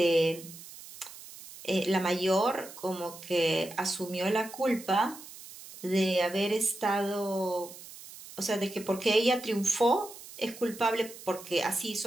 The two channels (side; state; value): right; noise; hiss, 16 dB below the sound